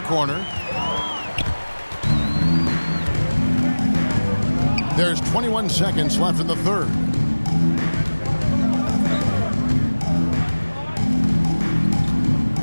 corner. There's 21 seconds left in the third.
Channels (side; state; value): both; inverted; correlation -1.00